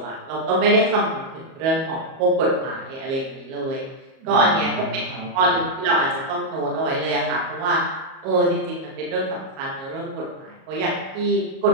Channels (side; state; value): left; late; 37 ms